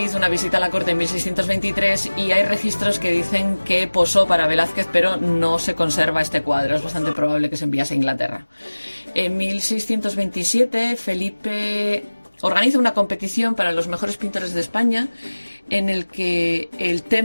hizo una visita a la corte en 1623 y hay registros que dicen que posó para Velázquez, pero no se conserva este cuadro. Es bastante probable que se enviase a Inglaterra. En 1627, Felipe organiza una competición para los mejores pintores de España, en el que el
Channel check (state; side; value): inverted; both; correlation -1.00